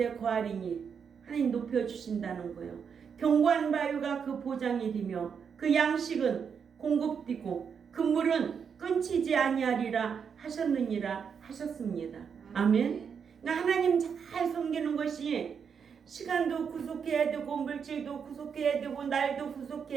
거하리니 하나님 높여주신다는 거예요. 견고한 바위가 그 보장이 되며 그 양식은 공급되고 그 물은 끊치지 아니하리라 하셨느니라 하셨습니다. 아멘. 그러니까 하나님 잘 섬기는 것이 시간도 구속해야 되고 물질도 구속해야 되고 날도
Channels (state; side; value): quieter; left; 6.7 dB